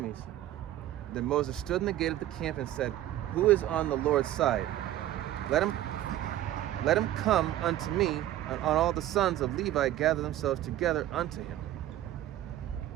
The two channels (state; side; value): quieter; left; 13.3 dB